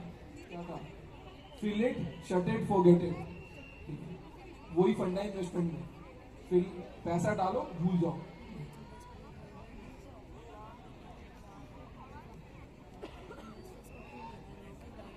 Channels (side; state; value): both; identical; correlation 1.00